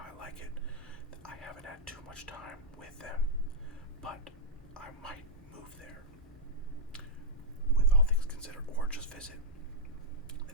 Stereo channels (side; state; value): both; normal; correlation -0.06